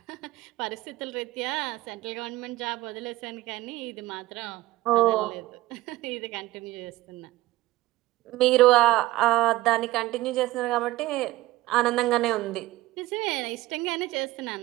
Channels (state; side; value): quieter; left; 17.5 dB